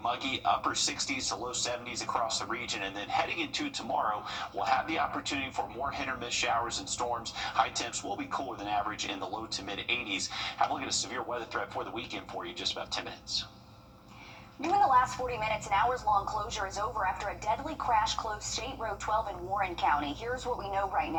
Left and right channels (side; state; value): both; identical; correlation 1.00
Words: muggy, upper 60s to low 70s across the region, and then heading into tomorrow, we'll have the opportunity for more hit or miss showers and storms. High temps will be cooler than average in the low to mid 80s. Have a look at a severe weather threat for the weekend for you in just about 10 minutes. During the last 40 minutes, an hours-long closure is over after a deadly crash closed State Road 12 in Warren County. Here's what we know right